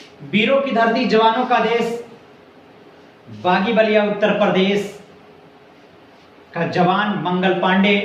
वीरों की धरती, जवानों का देश, बागी बलिया उत्तर प्रदेश का जवान मंगल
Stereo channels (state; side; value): identical; both; correlation 1.00